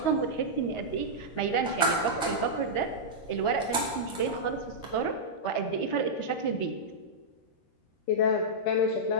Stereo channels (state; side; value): late; right; 13 ms